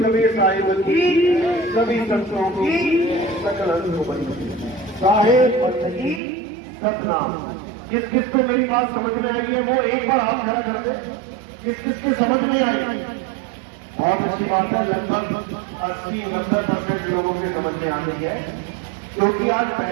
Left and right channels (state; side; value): drops out; left; at 6.2 s